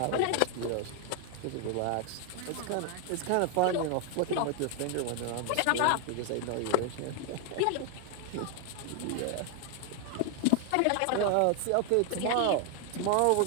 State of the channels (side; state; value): both; different; correlation 0.01